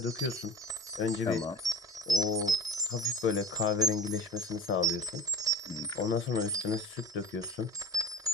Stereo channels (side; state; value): both; normal; correlation 0.39